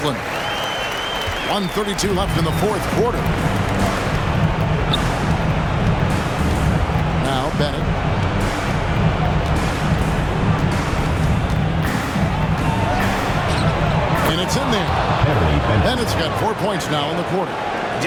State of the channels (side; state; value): both; identical; correlation 1.00